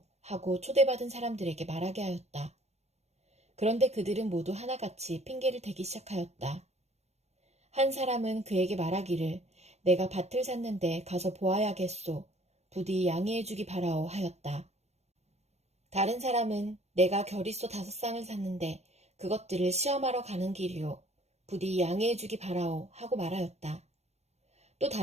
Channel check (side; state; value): left; late; 0.31 ms